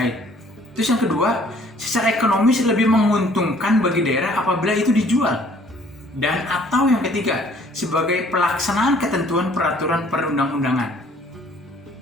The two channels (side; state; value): both; normal; correlation 0.58